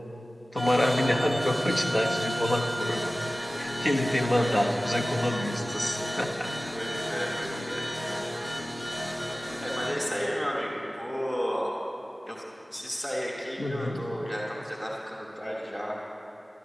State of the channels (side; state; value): both; normal; correlation 0.97